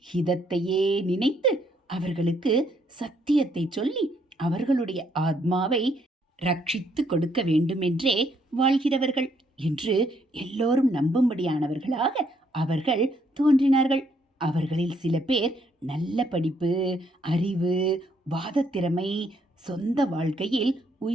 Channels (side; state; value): both; normal; correlation 0.70